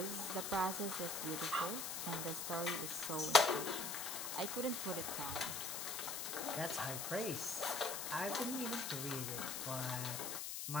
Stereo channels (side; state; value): left; noise; hiss, 3 dB below the sound